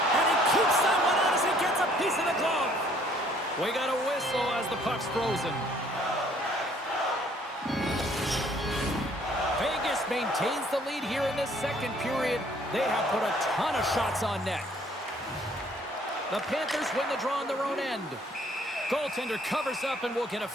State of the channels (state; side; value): normal; both; correlation 0.61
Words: And he keeps that one out as he gets a piece of the glove. We got a whistle as the puck's frozen. Vegas maintains the lead here in this second period. They have put a ton of shots on net. The Panthers win the draw on their own end. Goaltender covers up and will get a